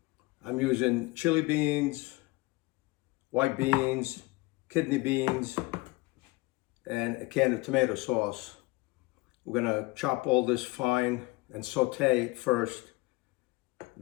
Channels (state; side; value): quieter; right; 23.2 dB